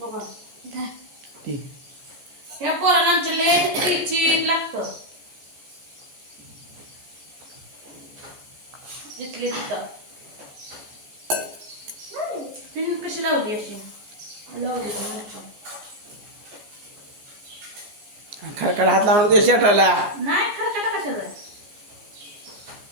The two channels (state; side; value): late; left; 14 ms